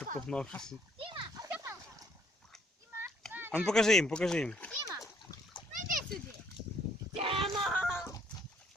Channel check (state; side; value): normal; both; correlation 0.65